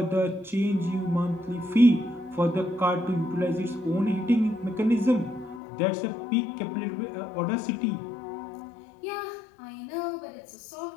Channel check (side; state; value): right; drops out; at 5.6 s